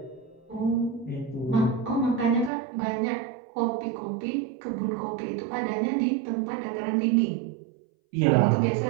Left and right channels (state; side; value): drops out; left; at 2.5 s